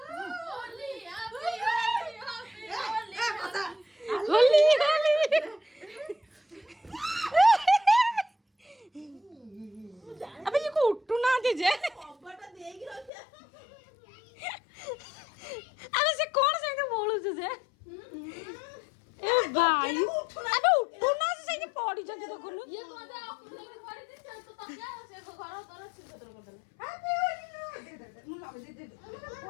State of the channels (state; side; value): drops out; right; at 13.1 s